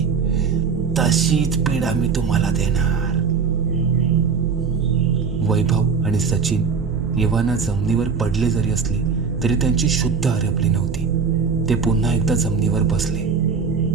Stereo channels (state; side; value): quieter; left; 5.7 dB